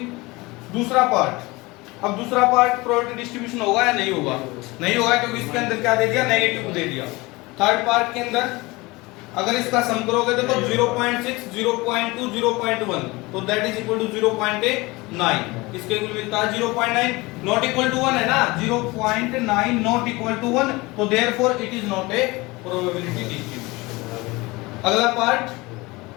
दूसरा पार्ट, अब दूसरा पार्ट प्रोबेबिलिटी डिस्ट्रीब्यूशन होगा या नहीं होगा, नहीं होगा क्योंकि इसके अंदर क्या दे दिया, नेगेटिव दे दिया। थर्ड पार्ट के अंदर अगर इसका सम करोगे तो 0.6 0.2 0.1 तो दैट इज इक्वल टू 0.9, इसके इक्वल मिलता है 0.9, नॉट इक्वल टू 1 है ना, 0.9 नॉट इक्वल टू 1, तो therefore it is not a probability distribution. अगला पार्ट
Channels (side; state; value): right; quieter; 22.7 dB